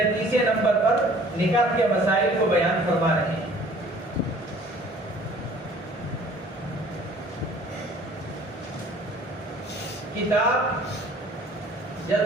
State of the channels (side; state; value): both; normal; correlation 0.53